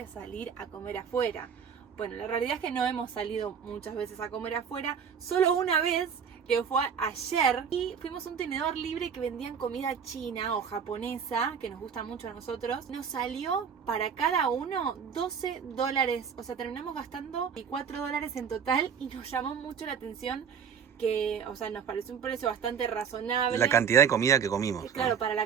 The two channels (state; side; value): quieter; left; 7.1 dB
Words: salir a comer afuera. Bueno, la realidad es que no hemos salido muchas veces a comer afuera, solo una vez, que fue ayer, y fuimos a un tenedor libre que vendían comida china o japonesa, que nos gusta mucho a nosotros. Nos salió para cada uno $12, o sea, terminamos gastando $4 en total y nos llamó mucho la atención que, o sea, nos pareció un precio bastante razonable. La cantidad de comida que comimos, ¿no? Claro, para la